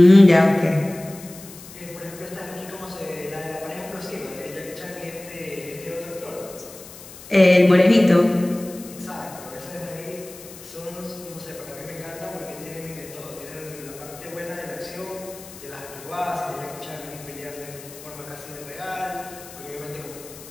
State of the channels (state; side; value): noise; left; hiss, 17 dB below the sound